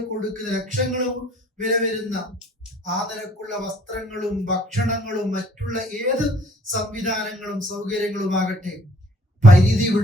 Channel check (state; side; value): normal; both; correlation 0.59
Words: കൊടുക്കുന്ന, ലക്ഷങ്ങളും വില വരുന്ന ആ നിലക്കുള്ള വസ്ത്രങ്ങളും ഭക്ഷണങ്ങളും മറ്റുള്ള ഏത് സംവിധാനങ്ങളും സൗകര്യങ്ങളുമാകട്ടെ പരിധി